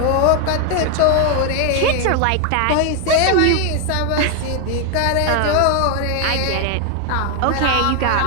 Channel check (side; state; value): both; different; correlation 0.00